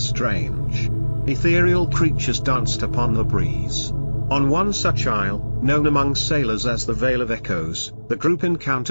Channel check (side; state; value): both; inverted; correlation -1.00